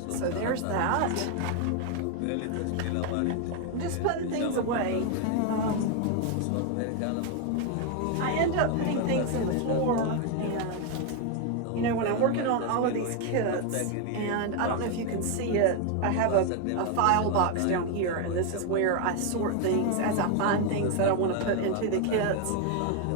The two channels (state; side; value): different; both; correlation 0.01